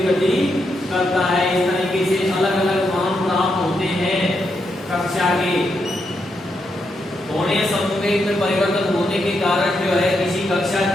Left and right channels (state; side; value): normal; both; correlation 0.82